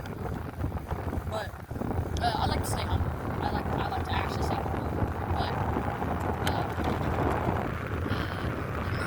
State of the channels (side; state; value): both; identical; correlation 1.00